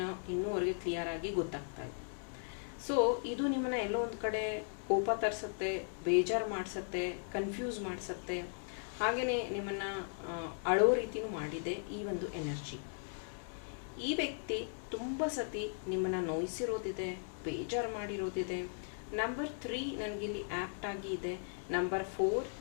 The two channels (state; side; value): silent; right; digital silence